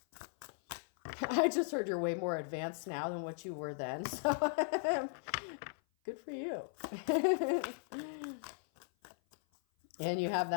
I just heard you're way more advanced now than what you were then. So good for you. And you have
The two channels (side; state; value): right; silent; 53 dB below the other